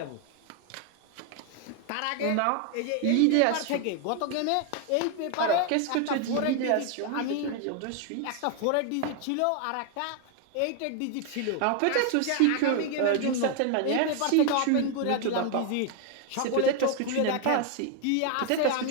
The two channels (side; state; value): both; different; correlation 0.01